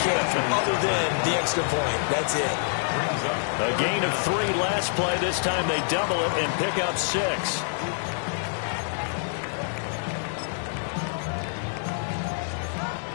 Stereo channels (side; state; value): right; silent; digital silence